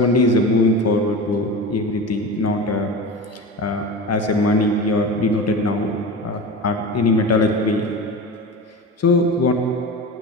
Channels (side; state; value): both; normal; correlation 0.28